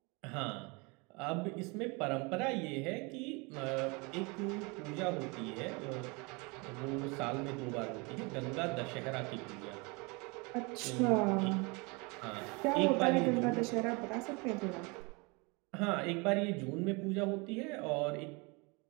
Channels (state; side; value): quieter; left; 28.7 dB